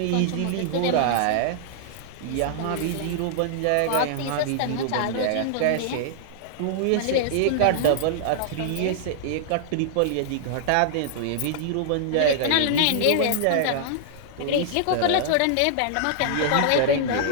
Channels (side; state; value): both; different; correlation -0.01